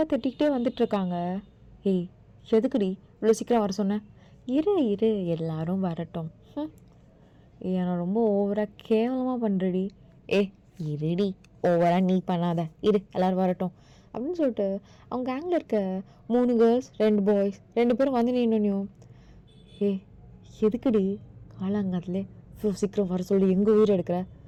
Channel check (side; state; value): both; identical; correlation 1.00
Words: திட்டிக்கிட்டே வந்துட்டுருக்காங்க. ஏய் எதுக்குடி இவ்வளோ சீக்கிரம் வர சொன்னேன்? இரு எல்லாரும் வரட்டும். நான் ரொம்ப ஓவராக கேவலமாக பண்ணுறடி. இருடி, ஓவராக நீ பண்ணாத, இரு எல்லோரும் வரட்டும் அப்படின்னு சொல்லிட்டு அவங்க கேங்கில் இருக்க 3 கேர்ள்ஸ் 2 பாய்ஸ் 2 பேரும் வந்து நின்னும். எதுக்குடி காலாங்காத்துலே இவ்வளோ சீக்கிரம் வர சொல்லி எங்கள் உயிர் எடுக்கிற?